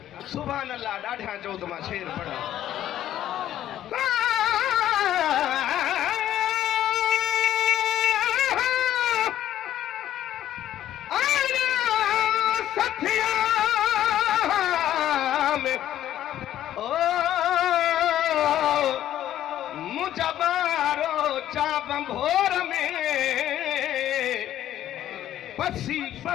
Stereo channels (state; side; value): quieter; right; 12.1 dB